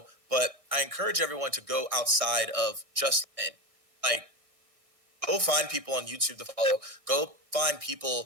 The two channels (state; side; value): late; left; 1.6 ms